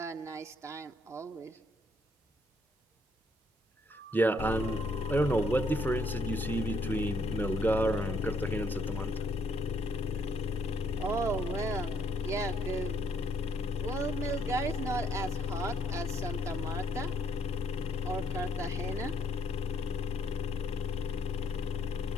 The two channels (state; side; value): normal; both; correlation 0.70